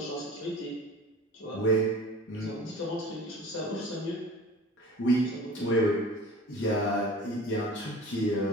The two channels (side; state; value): both; normal; correlation 0.41